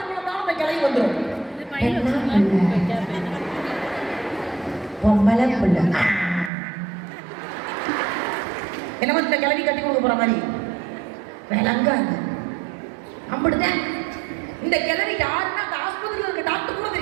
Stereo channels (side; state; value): left; drops out; at 6.5 s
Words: பிறந்தாலும் அந்த கிழவி வந்துடும். பொம்பளை பிள்ளை என்னமோ இந்த கிழவி கட்டி கொடுக்க போற மாதிரி விளங்காது. அப்படிதான் இந்த கிழவி யாருன்னா அந்த ஆஸ்பத்திரியில் இருக்க டாக்டர் கூட